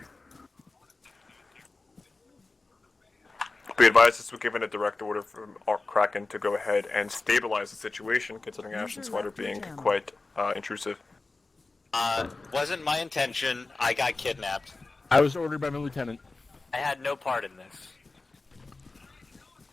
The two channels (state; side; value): quieter; right; 3.5 dB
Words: Be advised this was given a direct order from Kraken to go ahead and stabilize the situation, considering User Ashton Swider left your being channel. quite intrusive. Wasn't my intention. I got kidnapped. I was ordered by my lieutenant. I had no part in this.